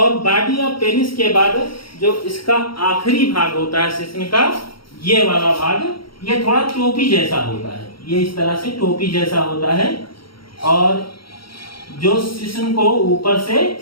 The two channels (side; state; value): right; late; 0.74 ms